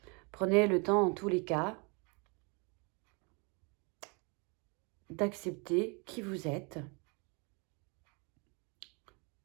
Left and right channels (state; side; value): quieter; left; 32.0 dB